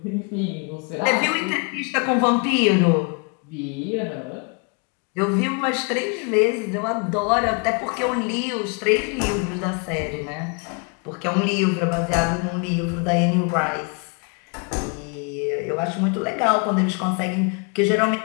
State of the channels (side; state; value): right; quieter; 34.5 dB